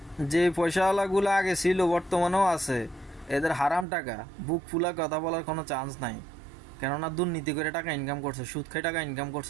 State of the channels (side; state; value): left; drops out; at 3.9 s